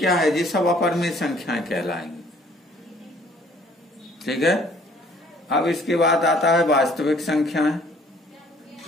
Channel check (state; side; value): normal; both; correlation 0.58